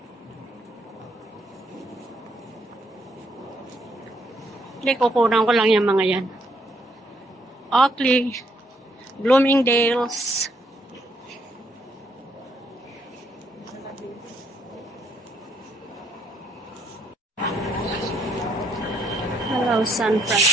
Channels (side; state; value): both; normal; correlation 0.72